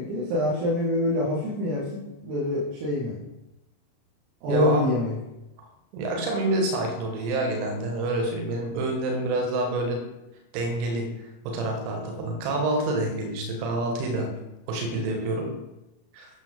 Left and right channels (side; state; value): left; late; 34 ms